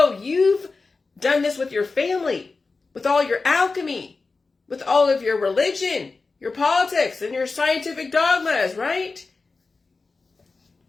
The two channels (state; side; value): quieter; right; 4.0 dB